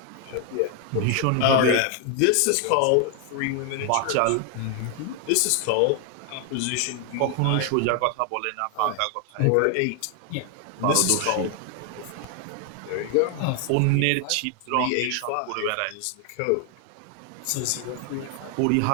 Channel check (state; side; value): different; both; correlation 0.00